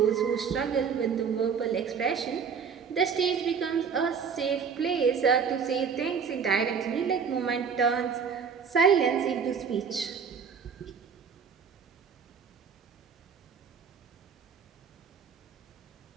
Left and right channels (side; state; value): left; quieter; 6.4 dB